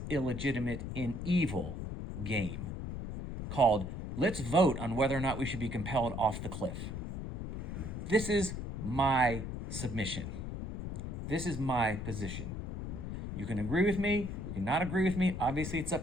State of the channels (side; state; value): left; noise; rumble, 6 dB below the sound